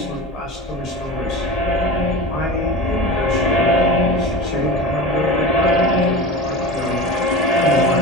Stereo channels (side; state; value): both; normal; correlation 0.30